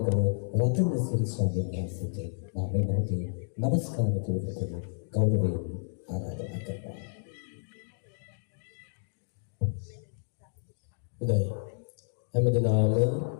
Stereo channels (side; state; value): right; silent; digital silence